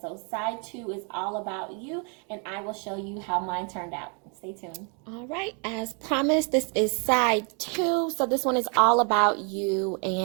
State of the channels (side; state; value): left; quieter; 36.4 dB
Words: So side 2 is all about you, and I will show you how mine turned out. Stay tuned. All right, as promised, this is side 2. So this one is all about you.